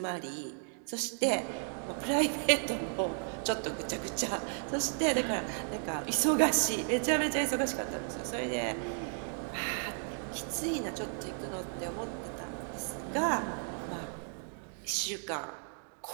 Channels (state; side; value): silent; left; 55 dB below the other